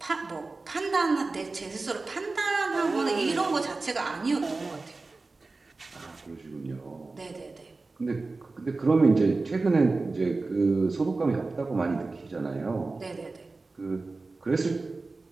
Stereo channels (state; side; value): quieter; left; 3.6 dB